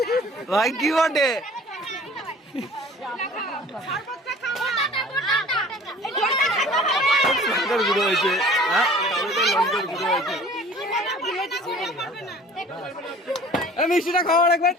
ভাই কি বটে লঙ্কার গুঁড়ো হয়েছে লঙ্কার গুঁড়ো হয়েছে মিষ্টিটা খাও আরেকবার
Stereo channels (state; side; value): normal; both; correlation 0.47